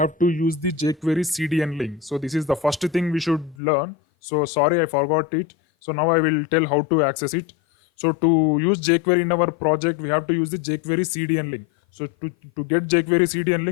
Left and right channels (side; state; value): right; drops out; at 3.6 s